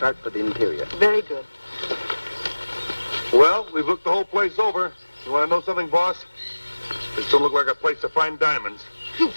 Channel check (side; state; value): both; inverted; correlation -1.00